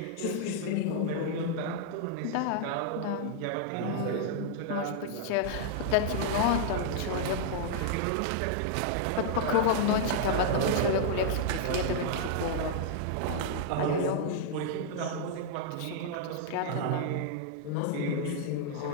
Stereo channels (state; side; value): different; both; correlation -0.01